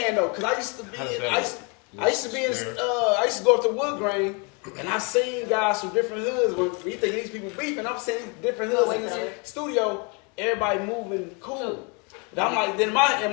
though, cause I used to be. How does that I used to be in. I used to go up to Wood Grain, and I seen guys from different hoods. When you think these people beefing, I'm seeing different hoods in the studio. Everybody moving cool. But I'm like, then in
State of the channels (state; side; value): quieter; right; 33.5 dB